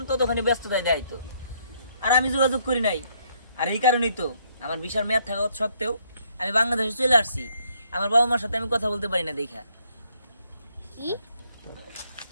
ততক্ষণই ব্যস্ততায় দেখাইতো। আর আমি যোগাযোগ করি নাই। আর এই কারণেই তো আমার ভিসার মেয়াদ থাকা সত্ত্বেও আমি বাংলাদেশে চলে আসছি। আমার বাবা মার সাথে আমি কথা বলতে পারি না দেখা। কি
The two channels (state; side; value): inverted; both; correlation -0.69